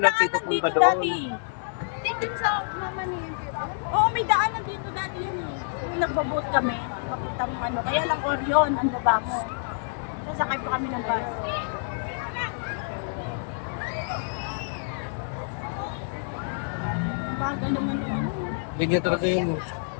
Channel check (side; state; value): right; silent; 60 dB below the other